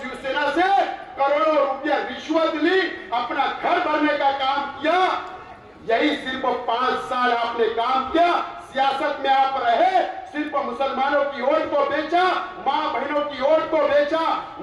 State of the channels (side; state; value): both; identical; correlation 1.00